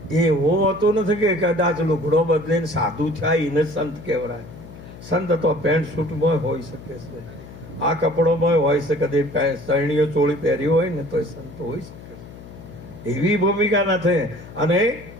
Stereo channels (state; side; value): noise; left; hum, 17 dB below the sound